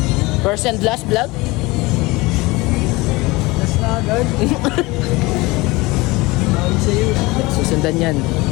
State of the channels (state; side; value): quieter; right; 22.4 dB